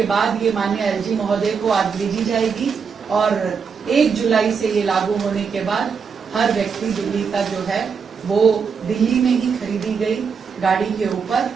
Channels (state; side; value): quieter; left; 6.0 dB